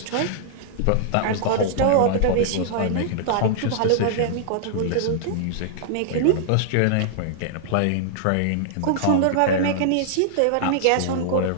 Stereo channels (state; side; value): different; both; correlation -0.01